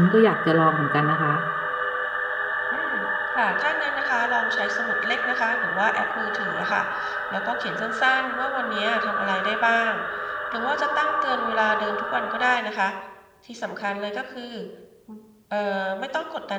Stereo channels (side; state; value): both; identical; correlation 1.00